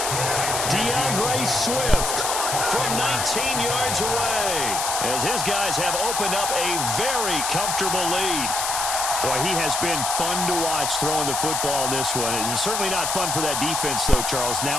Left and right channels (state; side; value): noise; left; hiss, 1 dB below the sound